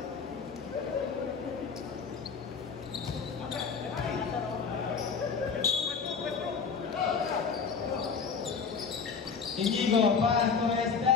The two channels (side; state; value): right; quieter; 5.7 dB